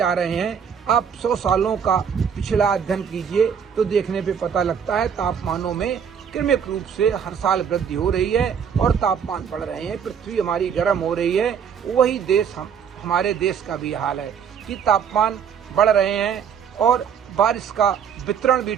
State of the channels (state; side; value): quieter; left; 7.5 dB